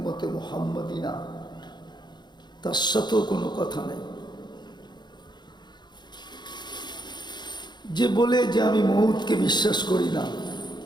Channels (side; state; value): right; late; 0.21 ms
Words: মুহাম্মদী না তার সাথেও কোনো কথা নেই। যে বলে যে আমি মউতকে বিশ্বাস করি না,